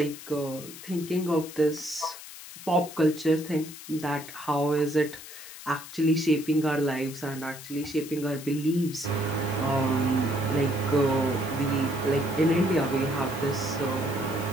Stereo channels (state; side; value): noise; left; hiss, 14 dB below the sound